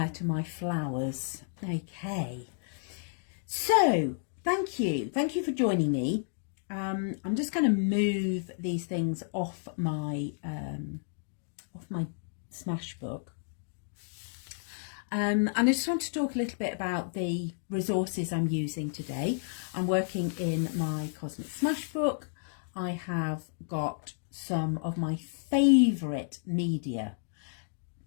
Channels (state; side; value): silent; right; digital silence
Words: to my flowers. Okay, so thank you for joining me. I'm just going to move these things off my Smashbook. And I just want to talk a little bit about the resources I'm using today. I'm working in my Cosmic Smashbook. I have got some of my favourite media,